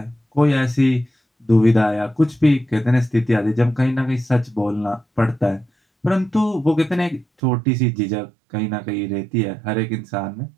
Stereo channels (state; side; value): drops out; left; at 7.2 s